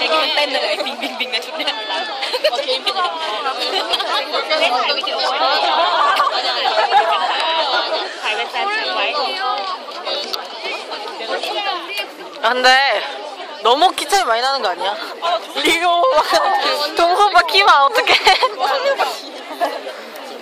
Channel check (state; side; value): identical; both; correlation 1.00